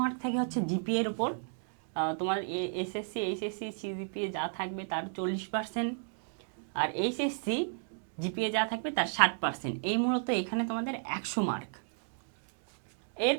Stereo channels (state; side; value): silent; left; digital silence